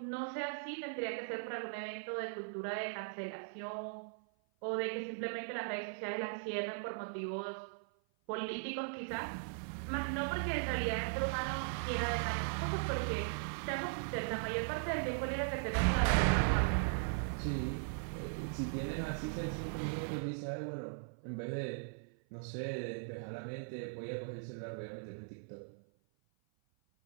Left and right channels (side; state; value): left; silent; 52 dB below the other